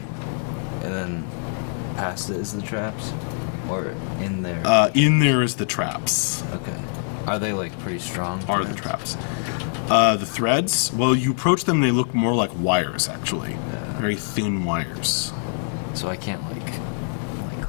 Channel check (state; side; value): silent; right; digital silence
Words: And then past it is the traps? Or in there? In there is the traps. Okay. Are they like pretty strong Are threads? the traps. The threads, well, you approach them, they look more like wires, actually. Very thin wires. So I can't like